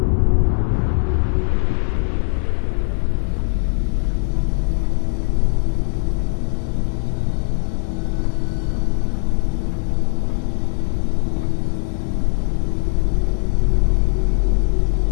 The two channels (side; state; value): right; silent; 56 dB below the other